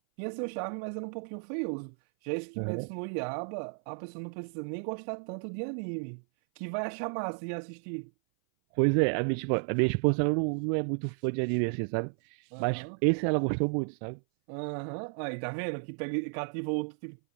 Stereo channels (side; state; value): left; silent; 56 dB below the other